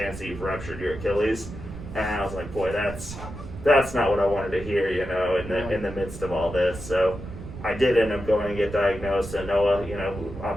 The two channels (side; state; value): right; noise; rumble, 11 dB below the sound